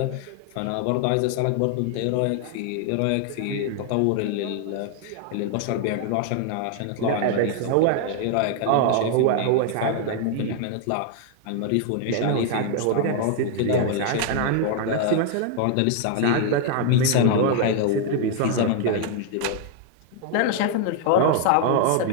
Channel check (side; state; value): both; different; correlation 0.00